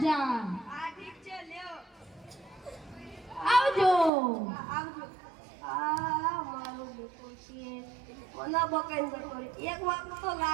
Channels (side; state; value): left; drops out; at 4.1 s